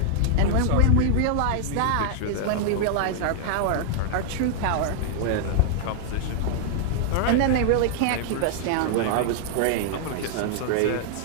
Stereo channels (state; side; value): different; both; correlation -0.01